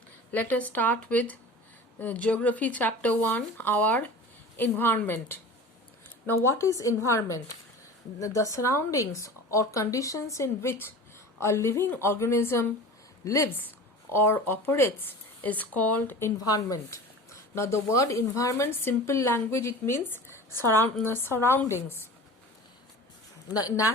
let us start with Geography Chapter 1, our environment. Now, what is environment? The surroundings or conditions in which a living organism lives or operates is called environment. Now, the word environment, simple language, it means surroundings.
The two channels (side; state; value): both; normal; correlation 0.37